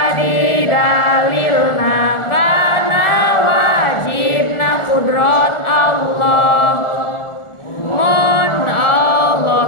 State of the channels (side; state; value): right; late; 1.4 ms